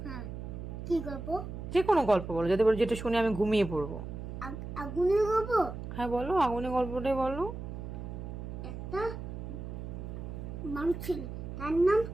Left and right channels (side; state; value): right; noise; hum, 8 dB below the sound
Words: হ্যাঁ, কি গল্প? যে কোনো গল্প বলো, যাতে বলো যেটা শুনে আমি ঘুমিয়ে পড়বো। আগুনের গল্প? হ্যাঁ বলো, আগুনের গল্পটাই বলো। একটা মানুষ ছিল, তার নাম